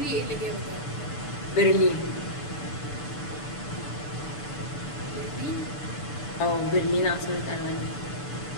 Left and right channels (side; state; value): right; late; 6.8 ms